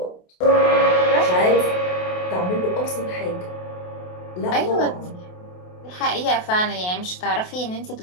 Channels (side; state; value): right; late; 28 ms